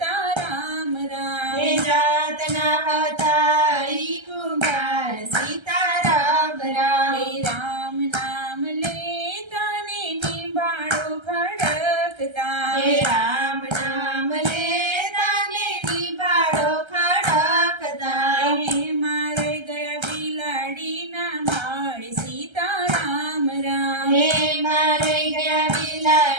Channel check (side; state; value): left; late; 1.3 ms